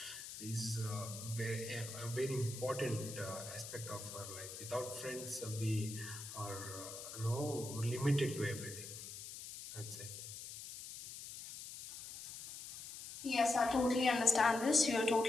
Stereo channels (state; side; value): noise; left; hiss, 10 dB below the sound